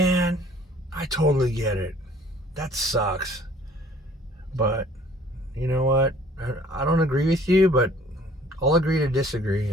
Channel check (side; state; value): both; normal; correlation 0.55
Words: I totally get it. That sucks. But you know what? I don't agree with you, but I'll agree to